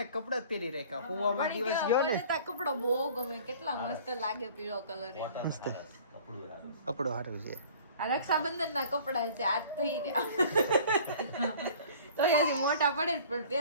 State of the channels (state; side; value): inverted; both; correlation -0.47